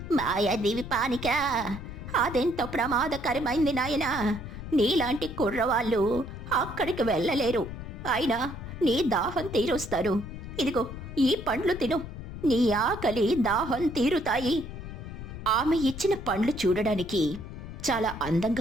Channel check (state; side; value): noise; left; rumble, 10 dB below the sound